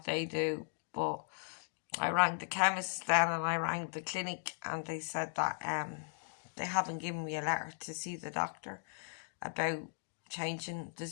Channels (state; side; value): silent; right; digital silence